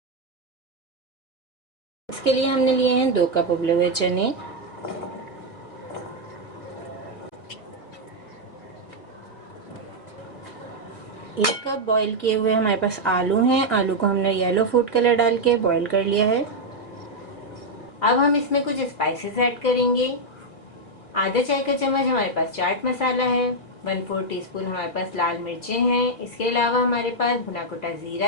इसके लिए हमने लिए हैं 2 कप उबले हुए चने, 1 कप बॉईल किए हुए हमारे पास आलू हैं। आलू को हमने येलो फूड कलर डाल के बॉईल कर लिया है। अब हम इसमें कुछ स्पाइसेस ऐड करेंगे। आधा चाय का चम्मच हमारे पास चाट मसाला है, 1/4 टीस्पून हमारे पास लाल मिर्चें हैं। इसके अलावा हमारे पास भुना कुटा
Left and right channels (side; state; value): right; late; 1.8 ms